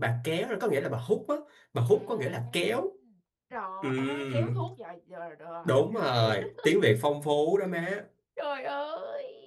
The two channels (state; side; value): identical; both; correlation 1.00